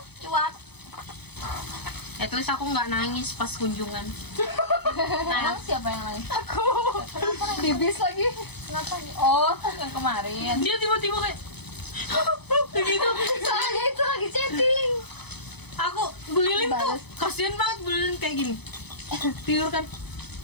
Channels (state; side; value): late; right; 0.98 ms